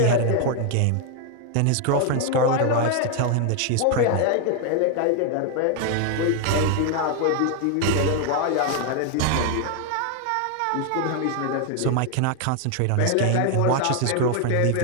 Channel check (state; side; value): different; both; correlation 0.00